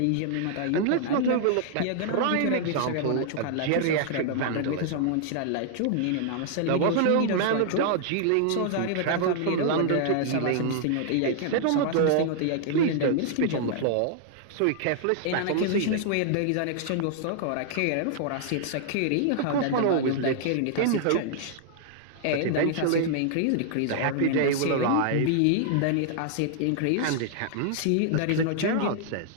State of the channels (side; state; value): both; different; correlation -0.01